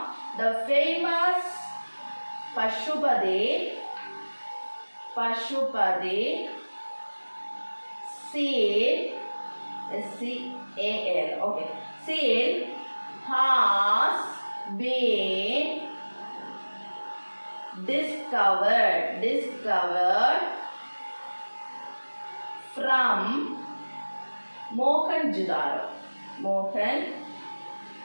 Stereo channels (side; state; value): both; inverted; correlation -1.00